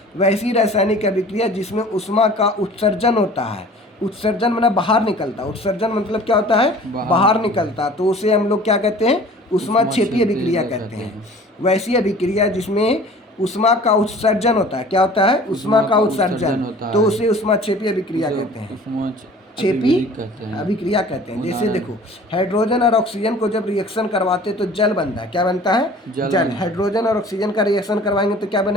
वैसी रासायनिक अभिक्रिया जिसमें ऊष्मा का उत्सर्जन होता है। उत्सर्जन माने बाहर निकलता, उत्सर्जन मतलब क्या होता है, बाहर निकलता, तो उसे हम लोग क्या कहते हैं, ऊष्माक्षेपी अभिक्रिया कहते हैं। वैसी अभिक्रिया जिसमें ऊष्मा का उत्सर्जन होता है, क्या होता है, ऊष्मा का उत्सर्जन, तो उसे ऊष्माक्षेपी अभिक्रिया कहते हैं, छेपी अभिक्रिया कहते हैं। जैसे देखो, हाइड्रोजन और ऑक्सीजन को जब रिएक्शन करवाते तो जल बनता है। क्या बनता है, जल। हाइड्रोजन और ऑक्सीजन का रिएक्शन करवाएंगे तो क्या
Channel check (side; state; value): both; normal; correlation 0.46